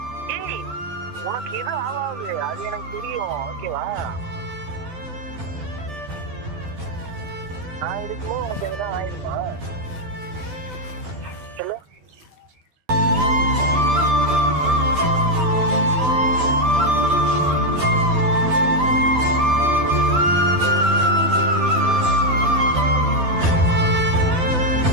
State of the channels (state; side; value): late; left; 12 ms